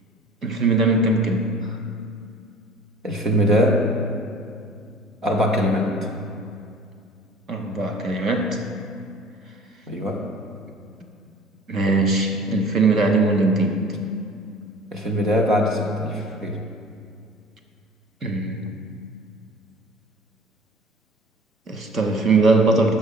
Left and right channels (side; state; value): both; normal; correlation 0.45